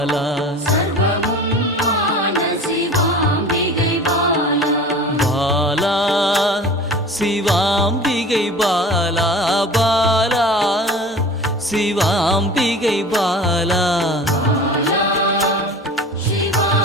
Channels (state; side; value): normal; both; correlation 0.39